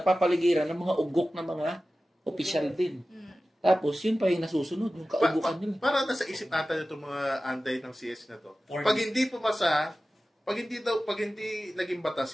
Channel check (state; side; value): normal; both; correlation 0.95